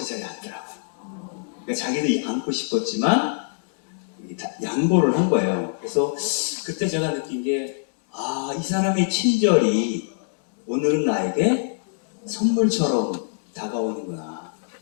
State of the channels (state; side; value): silent; right; digital silence